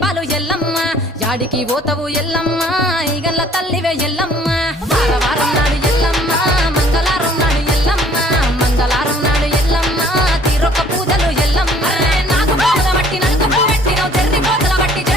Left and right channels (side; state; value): both; normal; correlation 0.56